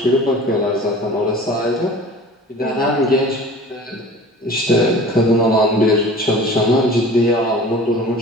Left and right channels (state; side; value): normal; both; correlation 0.42